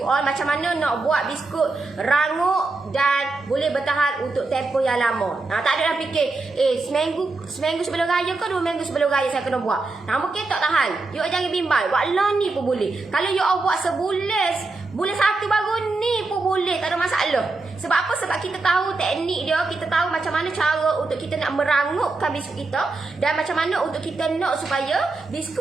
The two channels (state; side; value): quieter; left; 3.5 dB